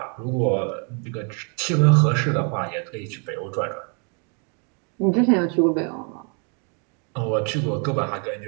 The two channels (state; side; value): quieter; left; 37.5 dB